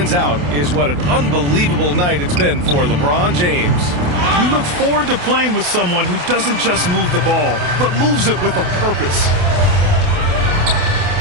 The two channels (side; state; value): left; late; 28 ms